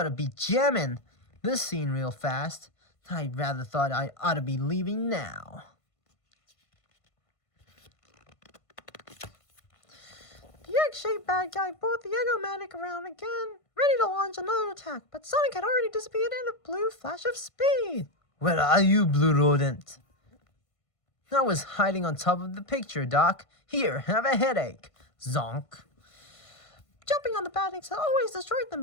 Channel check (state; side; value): late; right; 1.5 ms